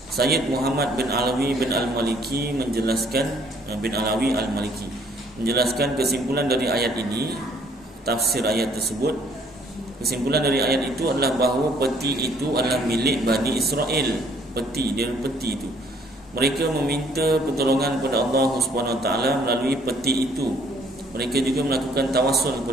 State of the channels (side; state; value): both; normal; correlation 0.62